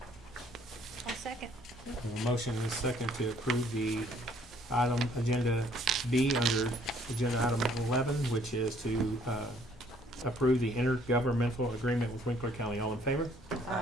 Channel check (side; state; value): both; normal; correlation 0.62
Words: I'll second. A motion and a second to approve the item agenda B under agenda item 11, which is to approve the intergovernmental agreement with Winkler County. All in favor?